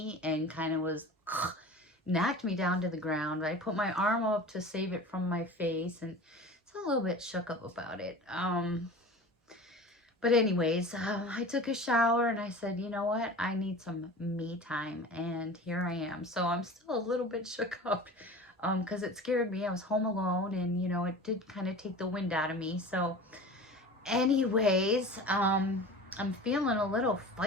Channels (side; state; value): both; normal; correlation 0.37